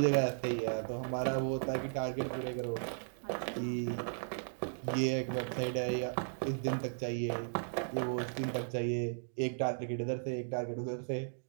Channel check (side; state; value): left; silent; digital silence